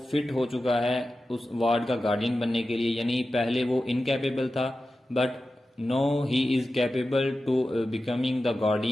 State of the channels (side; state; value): both; normal; correlation 0.93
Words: فٹ ہو چکا ہے اس وارڈ کا گارڈین بننے کے لیے، یعنی پہلے وہ انکیپیبل تھا but now he is capable to becoming the